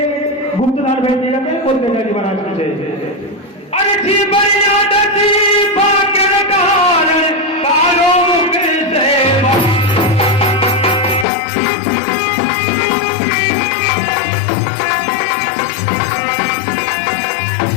गुप्तदान भेंट किए जाते हैं। बोल तेजा दीवाना की जय। अरे जी बनिया दसी भाग्य कारण कालो मुख सेवा।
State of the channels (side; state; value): right; drops out; at 11.2 s